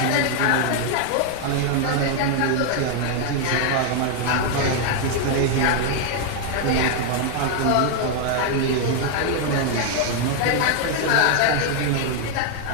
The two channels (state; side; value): different; both; correlation 0.00